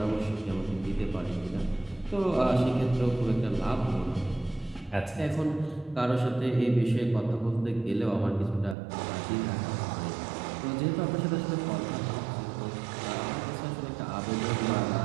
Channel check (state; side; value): drops out; left; at 8.8 s